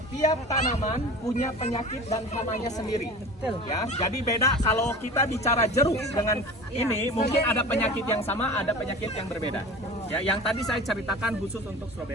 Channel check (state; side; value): normal; both; correlation 0.37